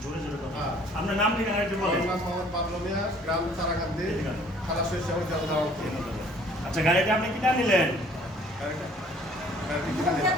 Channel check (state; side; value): normal; both; correlation 0.56